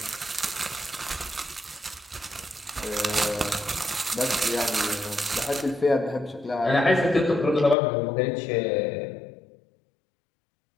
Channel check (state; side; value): drops out; right; at 7.8 s